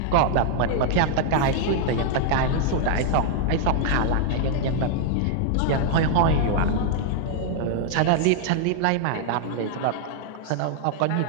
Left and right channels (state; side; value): different; both; correlation -0.01